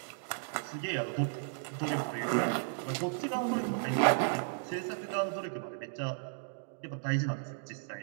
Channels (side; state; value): left; silent; digital silence